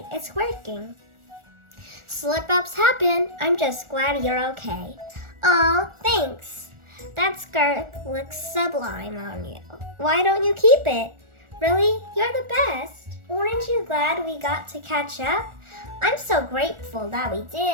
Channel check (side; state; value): left; late; 1.4 ms